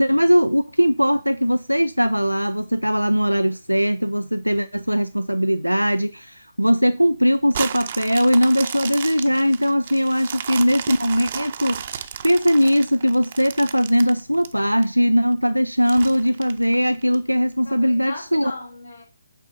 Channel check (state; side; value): inverted; both; correlation -0.99